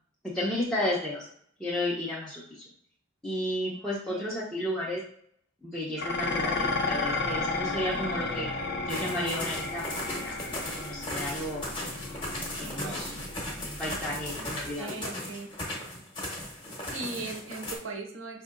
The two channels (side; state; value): both; normal; correlation 0.32